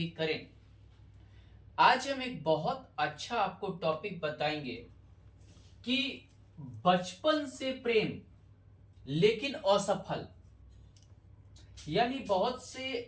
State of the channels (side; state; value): both; identical; correlation 1.00